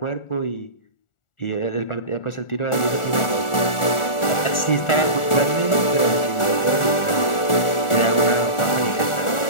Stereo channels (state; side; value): late; right; 1.4 ms